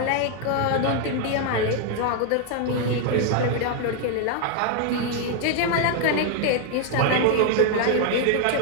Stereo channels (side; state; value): both; different; correlation 0.01